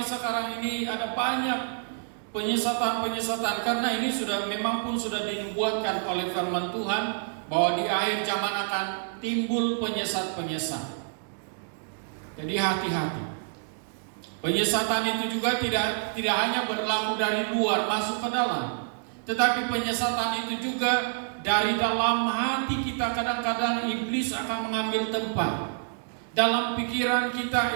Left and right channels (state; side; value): silent; left; digital silence